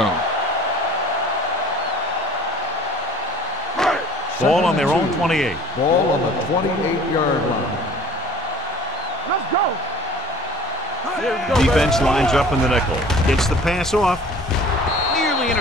Ball on their own 28. Ball on the 28-yard line. Let's go. Defense lines up in the nickel. Gets the pass off. Nearly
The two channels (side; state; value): both; normal; correlation 0.48